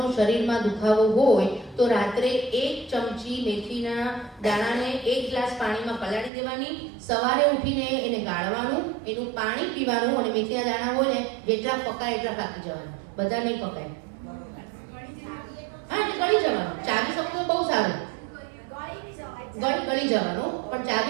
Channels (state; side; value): drops out; left; at 6.3 s